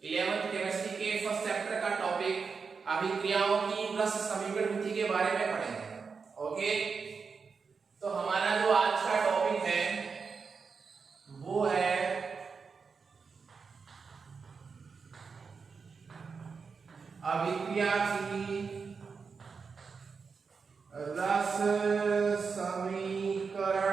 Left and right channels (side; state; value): left; quieter; 5.3 dB